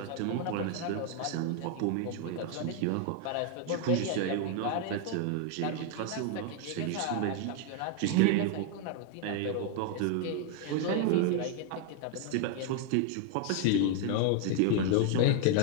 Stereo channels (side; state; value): both; different; correlation 0.00